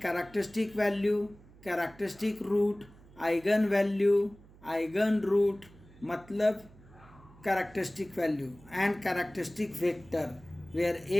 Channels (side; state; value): right; noise; hum, 24 dB below the sound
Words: characteristic value, characteristic root, eigen value, eigen root मतलब characteristic value and characteristic vector where